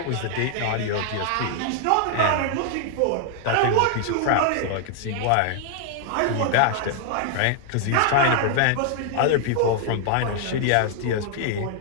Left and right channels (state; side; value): different; both; correlation 0.00